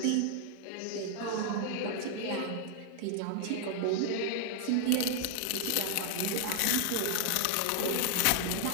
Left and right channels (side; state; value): both; different; correlation 0.00